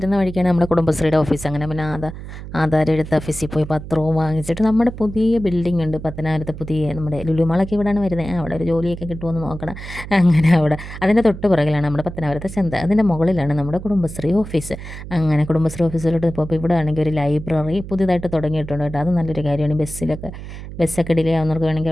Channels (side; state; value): right; noise; hum, 11 dB below the sound